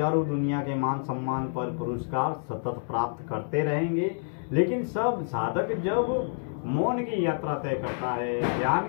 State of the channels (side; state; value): right; silent; 59 dB below the other